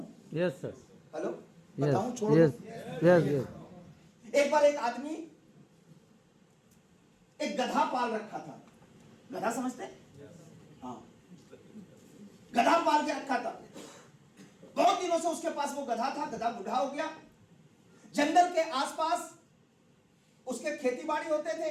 यस सर, हेलो, बताऊं? छोड़ यस, दो। यस, यस, एक बार एक आदमी एक गधा पाल रखा था। गधा समझते? हाँ, गधा पाल के रखा था। बहुत दिनों से उसके पास वो गधा था। गधा बूढ़ा हो गया। जंगल के आसपास उसके खेती बाड़ी होते थे।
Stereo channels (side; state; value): both; identical; correlation 1.00